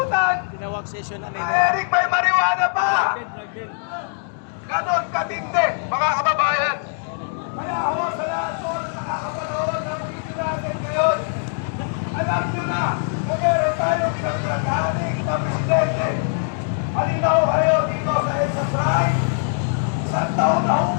Tinawag session na nila. Eric, may marijuana pa! Ganon katindi, mga kababayan. Kaya ako sa lahat po na nakakapanood ng video natin ngayon, alam nyo na, meron tayo pinagplagaling na presidente. Halina ho kayo dito sa exercise. 1 taon na ho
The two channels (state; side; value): silent; right; digital silence